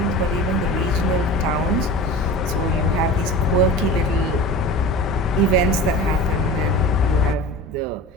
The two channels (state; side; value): normal; both; correlation 0.35